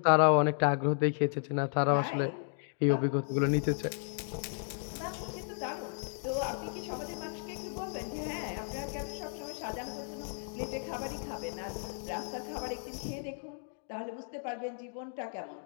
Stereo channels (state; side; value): silent; right; 55 dB below the other